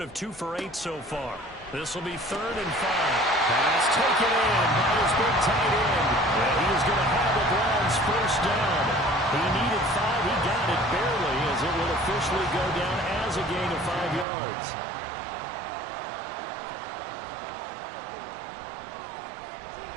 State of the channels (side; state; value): left; drops out; at 14.2 s